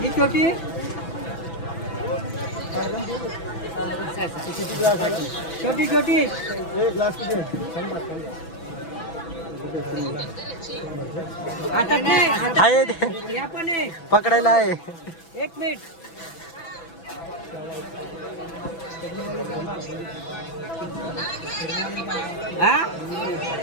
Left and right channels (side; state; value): right; late; 6.0 ms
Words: ही छोटी छोटी छोटी पकडायला आहे. 1 मिनिट.